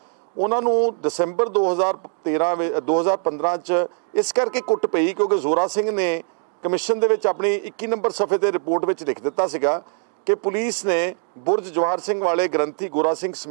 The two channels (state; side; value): silent; left; 55 dB below the other